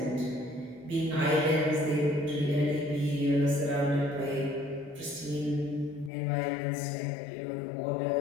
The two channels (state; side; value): drops out; right; at 6.1 s